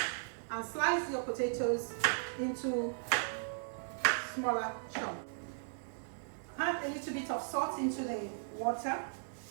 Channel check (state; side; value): silent; left; 53 dB below the other